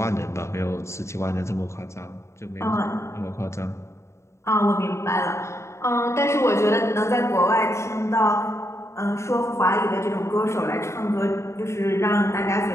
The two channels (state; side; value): late; right; 0.14 ms